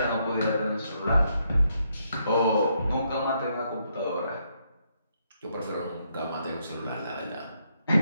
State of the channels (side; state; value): both; inverted; correlation -0.76